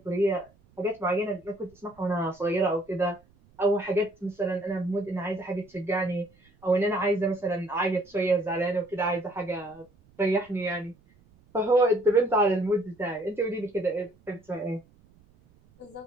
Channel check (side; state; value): right; noise; rumble, 30 dB below the sound